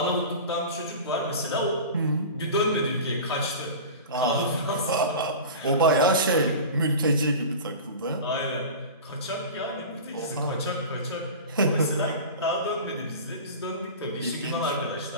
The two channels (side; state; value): both; inverted; correlation -0.33